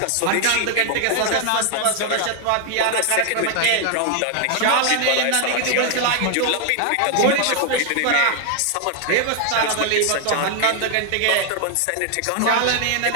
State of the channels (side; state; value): both; different; correlation 0.00